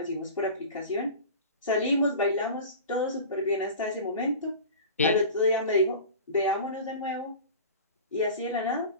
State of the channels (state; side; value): inverted; both; correlation -0.35